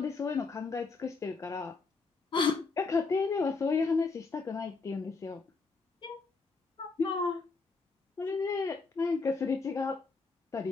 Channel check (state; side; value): quieter; right; 4.3 dB